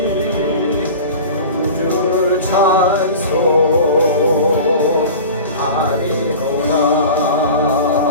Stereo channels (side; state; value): both; inverted; correlation -0.36